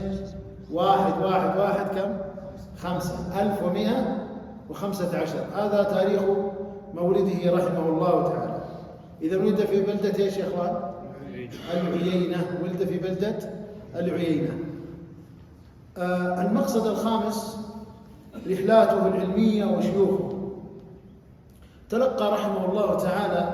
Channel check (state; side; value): identical; both; correlation 1.00